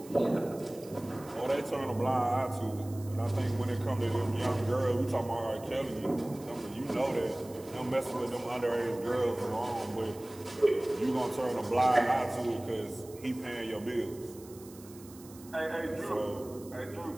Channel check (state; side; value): noise; right; hiss, 20 dB below the sound